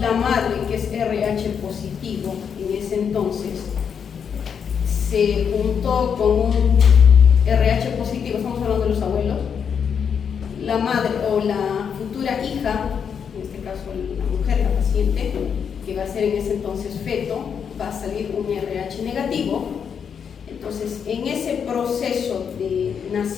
que es RH positivo en ese entonces, se juntó con un RH positivo, estamos hablando de los abuelos, la madre o la futura hija, en este caso la mujer, la paciente, que va a ser en ese entonces feto, va a salir un RH negativo. Entonces, en ese proceso de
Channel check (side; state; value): right; quieter; 7.2 dB